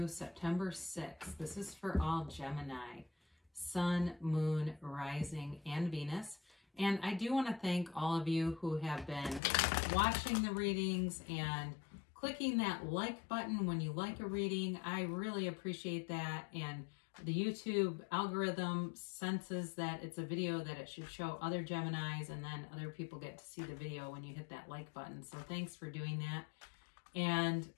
September 6th. This is for all Gemini, Sun, Moon, Rising, and Venus. And I do want to thank all of you who have been watching the readings and clicking that like button when you like a reading. I really appreciate that. And the YouTube algorithm senses that it's a video that it should show other Geminis, and then other people get to see the video when you hit that like button. So thanks for doing that. And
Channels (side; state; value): right; drops out; at 9.4 s